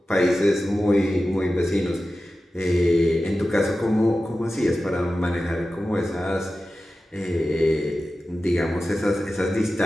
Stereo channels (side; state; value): both; normal; correlation 0.94